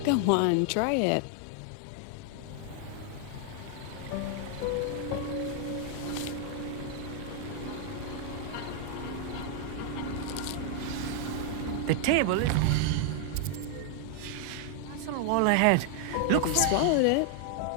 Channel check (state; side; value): different; both; correlation 0.00